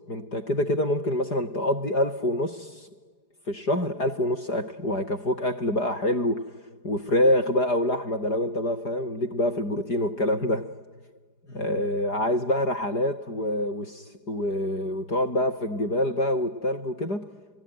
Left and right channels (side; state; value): right; late; 4.9 ms